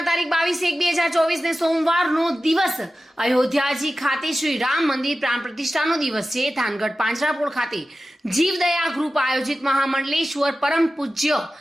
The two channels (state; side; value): normal; both; correlation 0.94